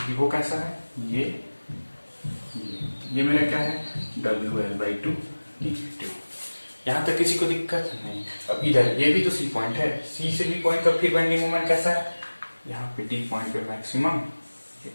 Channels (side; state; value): both; inverted; correlation -1.00